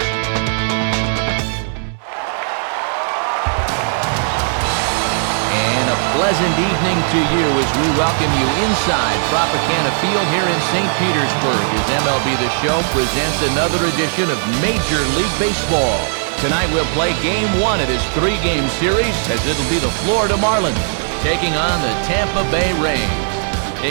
And a pleasant evening to you as we welcome you inside Tropicana Field here in St. Petersburg as MLB The Show presents another edition of Major League Baseball. Tonight we'll play Game 1 of this 3-game series as it'll be the Florida Marlins taking on the Tampa Bay Rays.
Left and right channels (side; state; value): left; silent; 68 dB below the other